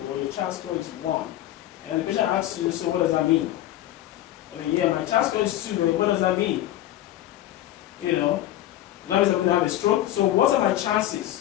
or your CHAR score is 1, and the patient asks you, so what does that mean? I mean, yeah, my CHAR score is 2, but what does that mean? You know, that means I'm going to have a stroke. So what are my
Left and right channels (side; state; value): right; quieter; 13.6 dB